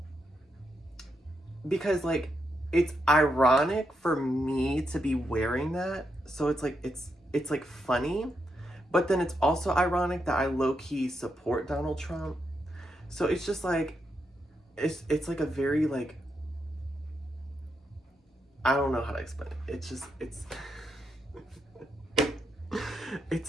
because like it's ironic for me to be wearing that. So it's like it's like funny, but then it's also ironic that I low-key support Donald Trump. So it's just like it's like a very like I don't know how to explain it. It's just it's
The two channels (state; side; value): normal; both; correlation 0.82